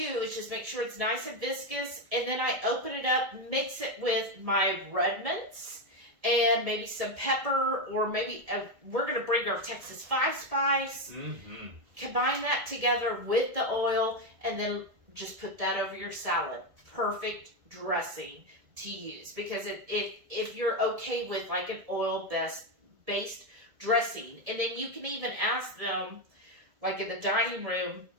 is just make sure it's nice and viscous, and then I open it up, mix it with my Redmonds, and maybe some pepper, or maybe we're going to bring our Texas 5 spice. Combine that together with the oil, and then just put that over your salad. Perfect dressing to use, because if you're okay with like an oil-based dressing, and then you can even ask them, like in the dining room,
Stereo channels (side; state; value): left; late; 1.7 ms